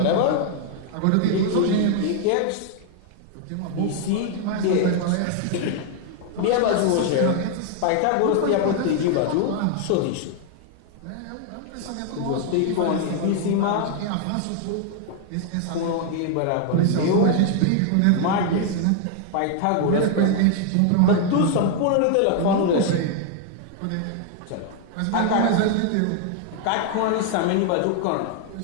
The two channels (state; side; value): different; both; correlation 0.00